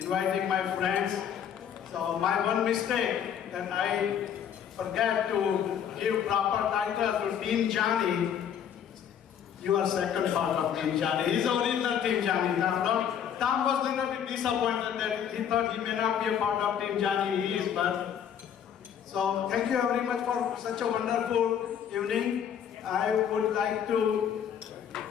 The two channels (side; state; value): right; quieter; 8.8 dB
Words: my friends. So my one mistake that I forget to give proper title to Team Jani. You are second part of Team Jani. He's the original Team Jani. Tom was a little bit disappointed that he thought he may not be a part of Team Jani. He is, but so thank you very much for such a wonderful evening. I would like to,